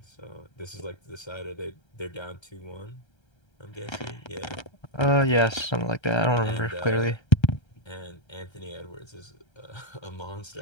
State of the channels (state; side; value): late; right; 1.3 ms